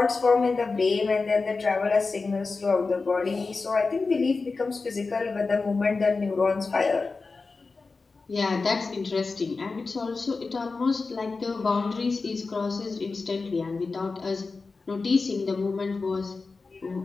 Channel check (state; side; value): quieter; right; 4.1 dB